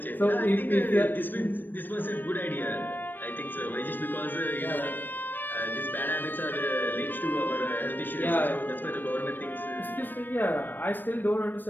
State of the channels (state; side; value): late; right; 0.092 ms